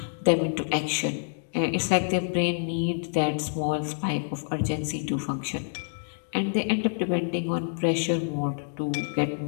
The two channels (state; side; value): silent; right; digital silence